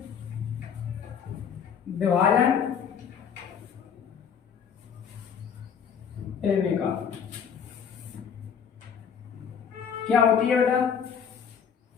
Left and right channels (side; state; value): right; quieter; 7.3 dB